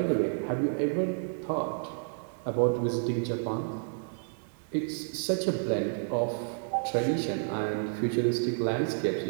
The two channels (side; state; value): left; silent; digital silence